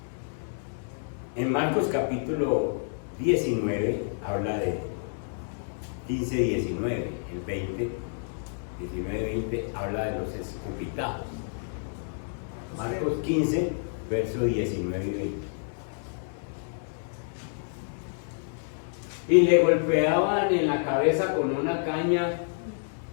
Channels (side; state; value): right; silent; 59 dB below the other